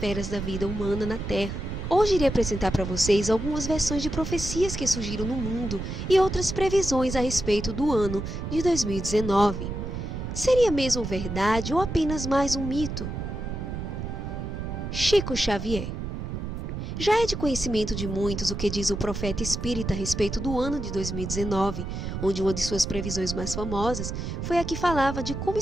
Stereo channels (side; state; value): right; noise; rumble, 5 dB below the sound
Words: da vida humana na Terra. Hoje irei apresentar para vocês algumas versões de profecias que surgiram no mundo e outras previsões a respeito do ano de 2019. Seria mesmo verdade ou apenas mais um mito? Chico Xavier. Já é de conhecimento de muitos o que diz o profeta espírita a respeito do ano de 2019, onde uma de suas previsões mais famosas foi a que falava de como